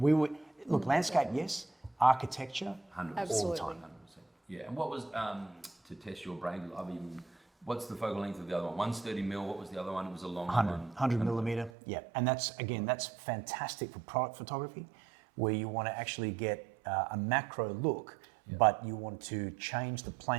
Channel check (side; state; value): left; drops out; at 11.7 s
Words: would, look, landscape, yes. Architecture, 100%. all the time. 100%. Yeah, and what was, to test your brain, what's the focal length of the other one? One's 30 mil, what was the other one? It was a long 100 millimeter, yeah. And that's fantastic for product photography, where you want to actually get a macro look, but you want to change the